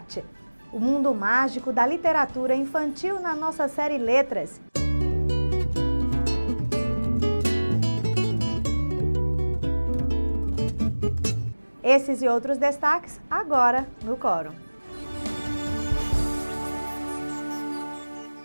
O mundo mágico da literatura infantil na nossa série Letras. Esses e outros destaques agora no Quórum.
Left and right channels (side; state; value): both; inverted; correlation -1.00